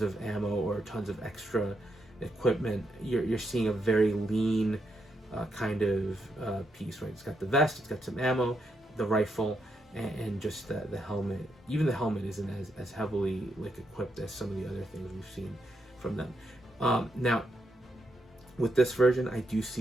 ammo, or tons of extra equipment. You're seeing a very lean kind of piece, right? It's got the vest, it's got some ammo, the rifle, and just the helmet. Even the helmet isn't as heavily like equipped as some of the other things we've seen from them. Now, with this version, I do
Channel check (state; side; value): normal; both; correlation 0.80